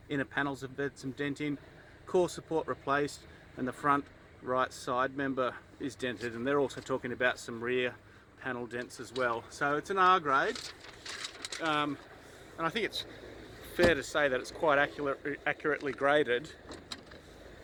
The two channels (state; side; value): identical; both; correlation 1.00